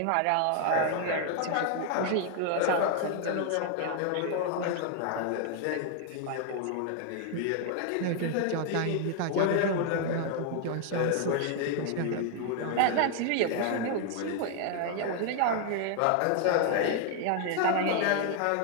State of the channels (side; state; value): both; different; correlation 0.00